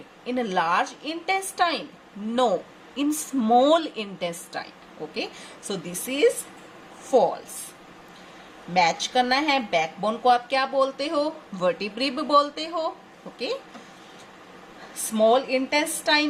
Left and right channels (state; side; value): identical; both; correlation 1.00